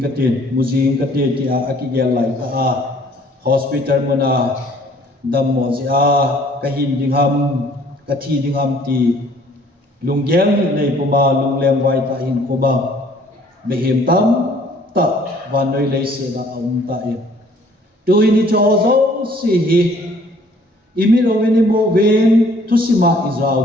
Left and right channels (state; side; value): normal; both; correlation 0.58